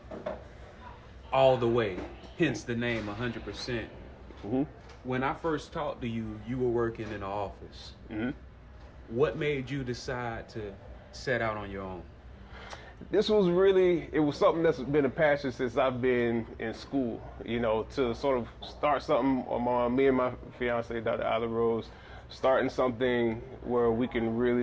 all the way, hence the name 100%. Mm-hmm. When I first talked to you, you were working in an office. Mm-hmm. What made you decide to set out on your own? This was really, it was something that's been a passion since I've been in school, you know, to sort of start something on me and my fiance, Dr. Ayla Rose, starting something where we can really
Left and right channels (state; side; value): identical; both; correlation 1.00